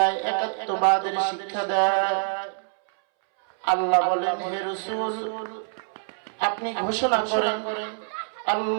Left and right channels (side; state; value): left; silent; 61 dB below the other